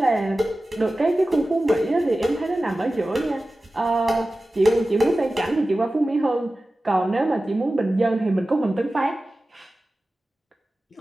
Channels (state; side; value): normal; both; correlation 0.95